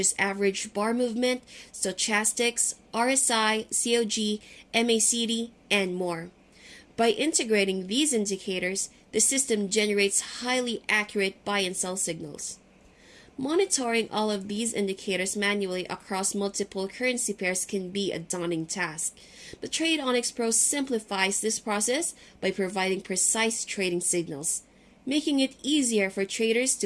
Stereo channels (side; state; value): both; identical; correlation 1.00